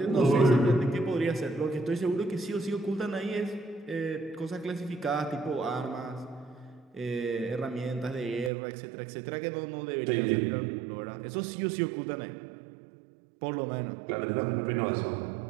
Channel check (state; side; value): drops out; left; at 8.5 s